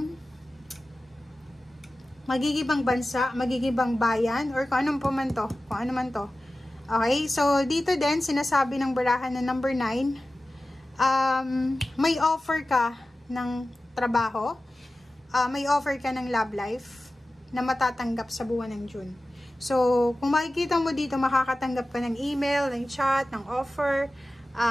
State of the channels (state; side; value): normal; both; correlation 0.95